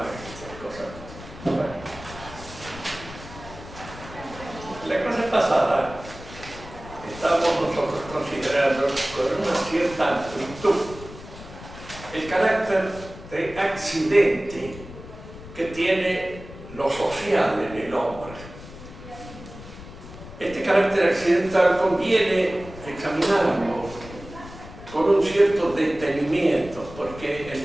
y esas cosas. Bueno. La clase pasada estábamos nosotros considerando con una cierta amplitud el carácter de accidente que tiene lo social en el hombre. Este carácter accidental conviene examinarlo con un cierto detenimiento, porque en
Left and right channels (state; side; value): noise; left; rumble, 15 dB below the sound